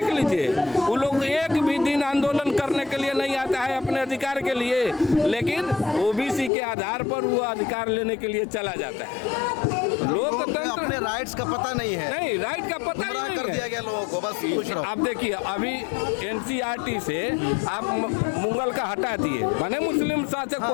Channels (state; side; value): drops out; right; at 6.5 s